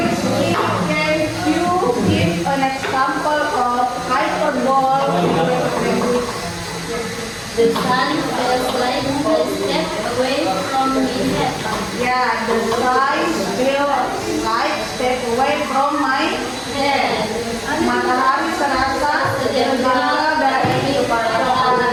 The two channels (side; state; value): both; identical; correlation 1.00